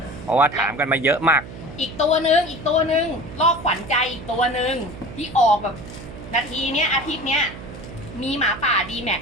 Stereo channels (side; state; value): right; noise; hum, 13 dB below the sound